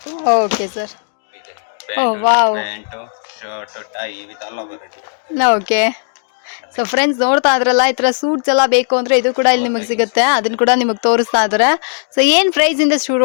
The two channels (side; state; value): right; silent; digital silence